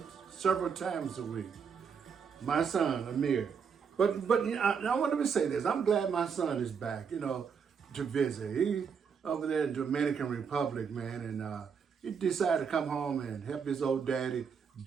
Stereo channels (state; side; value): quieter; left; 6.4 dB